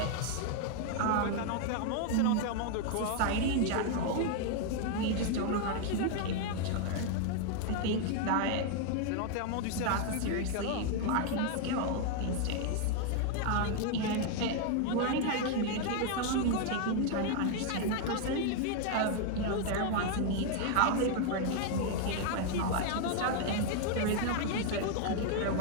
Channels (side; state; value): both; different; correlation 0.00